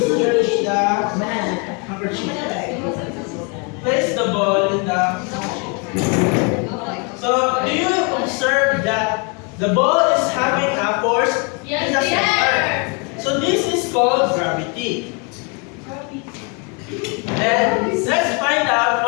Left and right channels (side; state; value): right; quieter; 33.4 dB